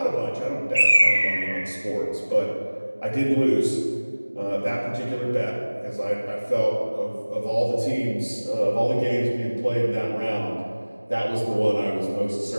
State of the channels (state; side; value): inverted; both; correlation -1.00